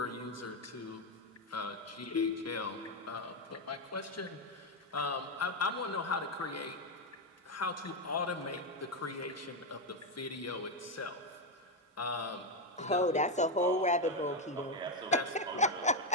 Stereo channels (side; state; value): both; normal; correlation 0.06